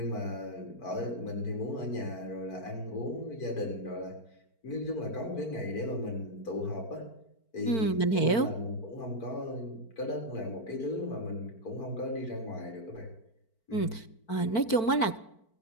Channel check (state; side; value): late; right; 4.5 ms